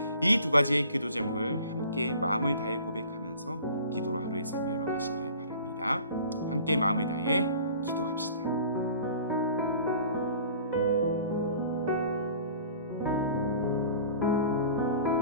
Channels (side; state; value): both; inverted; correlation -0.46